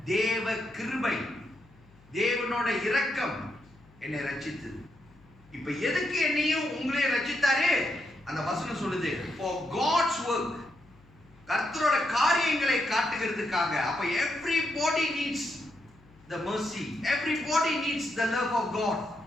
தேவ கிருபை, தேவனோட இரக்கம் என்னை ரட்சித்து. இப்ப எதுக்கு என்னையும் உங்களையும் ரட்சித்தாரு? அந்த வசனம் சொல்லுது, for God's work. கர்த்தரோட காரியங்களை காட்டுகிறதுக்காக. அப்ப everybody needs the mercy, everybody needs the love of God,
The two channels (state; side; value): noise; left; hum, 27 dB below the sound